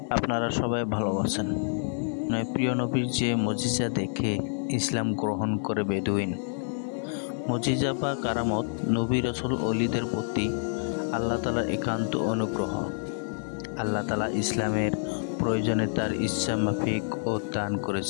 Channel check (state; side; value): silent; right; digital silence